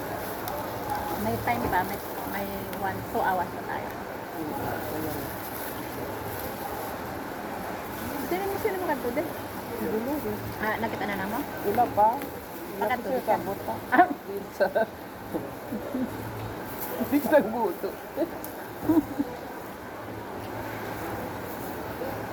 May time pa, may 2 hours pa tayo. Sino mo kanto din? Siguro din. Ah, nakita na namo? Wala pa. Wala pa Bakit siya hindi ka? kabot pa. Ah, Pizza. Pizza guto.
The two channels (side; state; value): both; identical; correlation 1.00